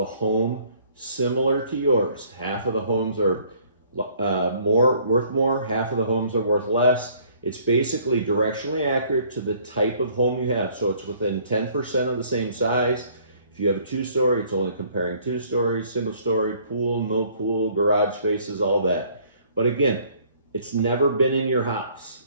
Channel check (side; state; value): both; inverted; correlation -0.59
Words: home similar to yours. Half of the homes are worth more, half of the homes are worth less. It's basically directionally accurate to the type of home you have. So it's within 10% of the same size. If you have a 2-story, it's only comparing 2 stories, single story, pool, no pool, garage spaces, all that. But again, it's never been in your house.